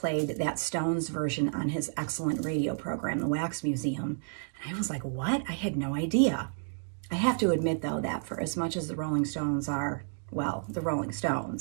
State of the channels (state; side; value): silent; left; digital silence